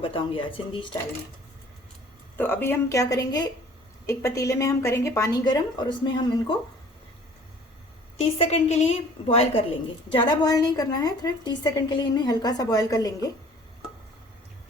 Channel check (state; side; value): normal; both; correlation 0.51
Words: आज सिंधी स्टाइल में। तो अभी हम क्या करेंगे, एक पतीले में हम करेंगे पानी गर्म और उसमें हम इनको 30 सेकंड के लिए बॉयल कर लेंगे। ज़्यादा बॉयल नहीं करना है, सिर्फ 30 सेकंड के लिए इन्हें हल्का सा बॉयल कर लेंगे।